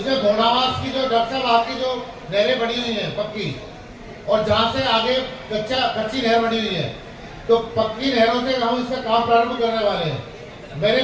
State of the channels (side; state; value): both; identical; correlation 1.00